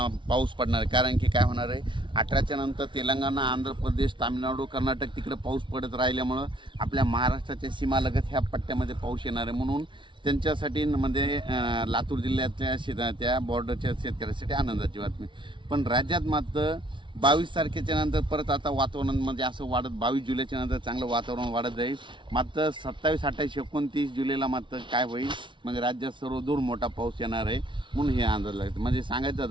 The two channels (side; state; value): left; late; 0.24 ms